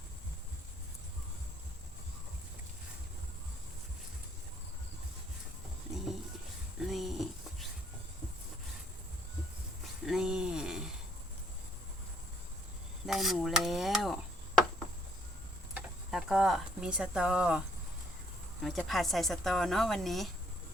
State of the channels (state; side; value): normal; both; correlation 0.66